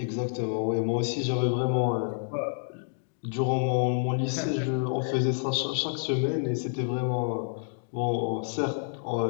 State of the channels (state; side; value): silent; right; digital silence